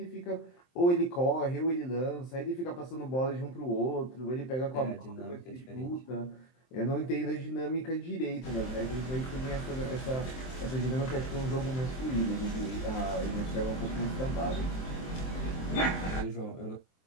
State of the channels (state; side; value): late; right; 23 ms